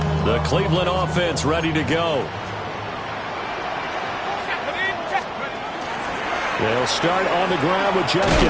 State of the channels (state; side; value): identical; both; correlation 1.00